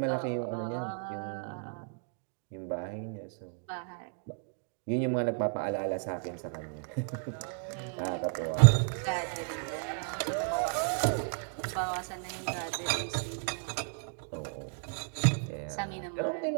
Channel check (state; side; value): silent; left; 56 dB below the other